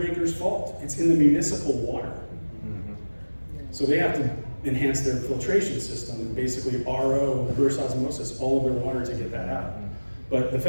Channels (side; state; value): both; inverted; correlation -1.00